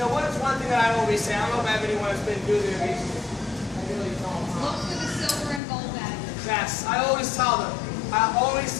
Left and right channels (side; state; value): right; drops out; at 5.6 s